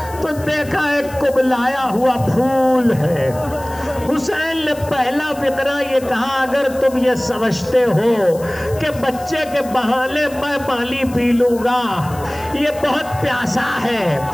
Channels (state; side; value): noise; left; hiss, 19 dB below the sound